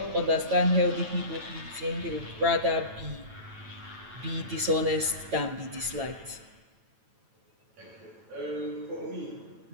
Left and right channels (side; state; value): left; late; 9.1 ms